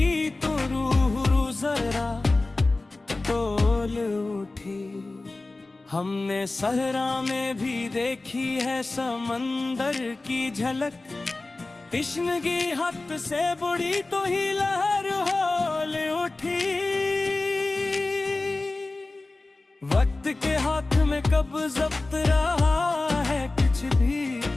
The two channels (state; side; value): quieter; right; 3.2 dB